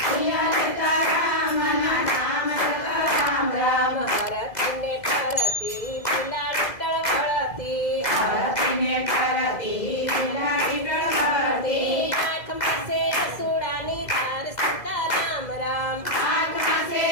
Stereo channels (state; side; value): late; right; 2.0 ms